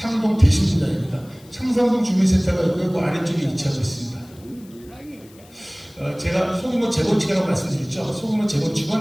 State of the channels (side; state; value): left; noise; hiss, 26 dB below the sound